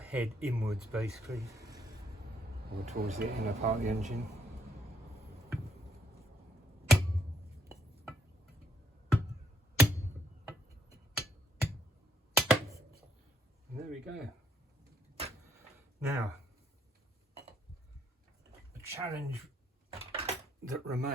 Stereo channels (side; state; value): both; normal; correlation 0.69